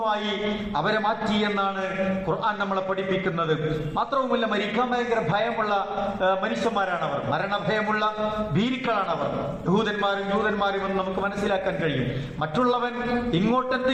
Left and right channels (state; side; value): identical; both; correlation 1.00